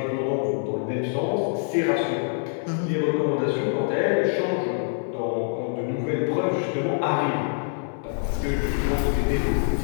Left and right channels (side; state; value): right; silent; digital silence